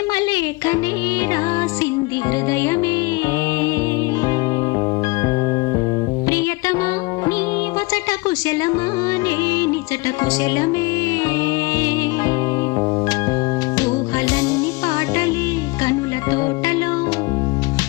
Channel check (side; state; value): right; quieter; 25.0 dB